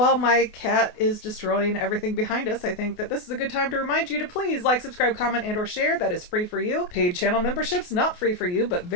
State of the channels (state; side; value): late; right; 28 ms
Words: my cat is destroying everything behind us, I think that this is a good time to remind you to please like, subscribe, comment, and or share. That is free for you. Paid channel memberships, not free for you, but